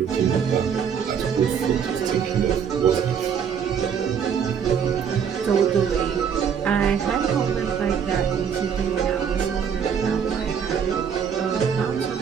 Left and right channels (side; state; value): left; quieter; 7.5 dB